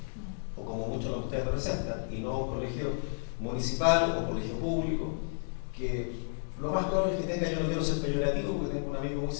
o como muchos de ustedes representan, y no un colegio municipal o colegio público, que lo más probable es que tenga, yo no quiero ser peyorativo porque tengo un amigo muy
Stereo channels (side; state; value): right; silent; digital silence